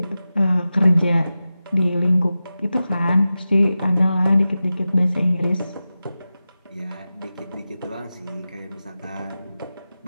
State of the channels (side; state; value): both; inverted; correlation -0.94